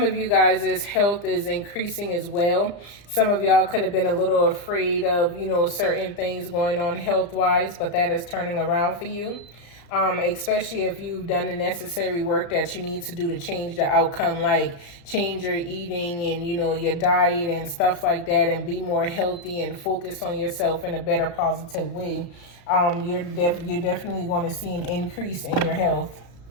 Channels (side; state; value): right; late; 34 ms